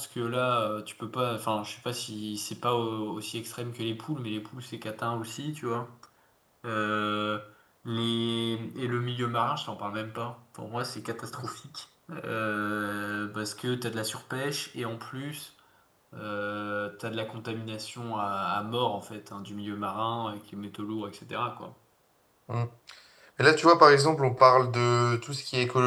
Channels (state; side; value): identical; both; correlation 1.00